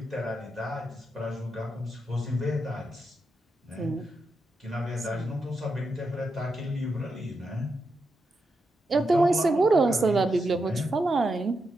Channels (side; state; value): both; normal; correlation 0.85